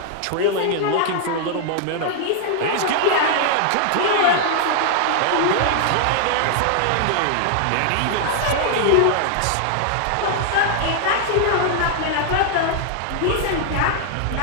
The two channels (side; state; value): both; different; correlation 0.00